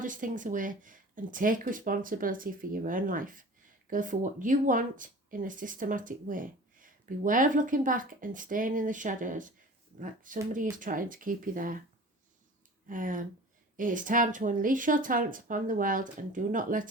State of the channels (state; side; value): normal; both; correlation 0.41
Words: things away and take responsibility for your own life. Go for what you want in a systematic way. Beware of looking back and staying in the shadows like somebody is trying to keep you there. It is time to unleash your talents upon the world and do not